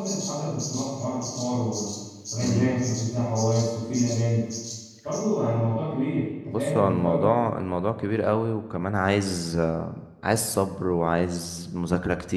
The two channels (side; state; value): both; identical; correlation 1.00